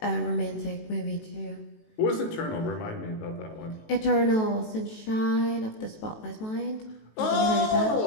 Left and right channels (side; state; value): right; late; 18 ms